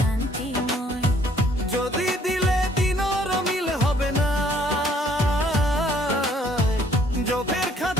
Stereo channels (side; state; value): both; normal; correlation 0.62